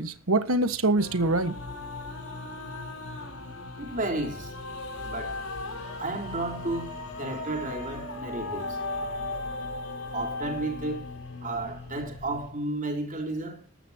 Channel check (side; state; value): both; normal; correlation 0.07